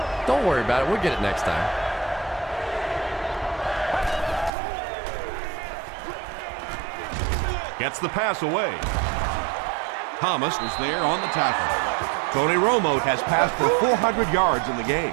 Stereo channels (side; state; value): left; drops out; at 4.5 s